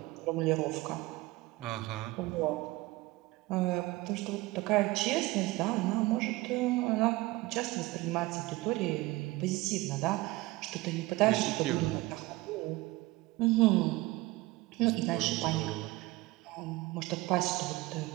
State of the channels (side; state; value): left; quieter; 20.3 dB